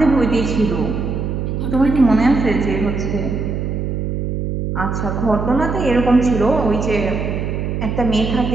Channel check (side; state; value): right; noise; hum, 2 dB below the sound